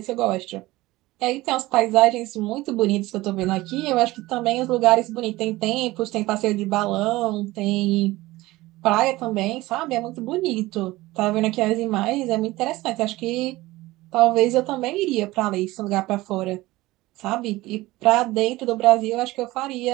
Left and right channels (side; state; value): left; quieter; 18.9 dB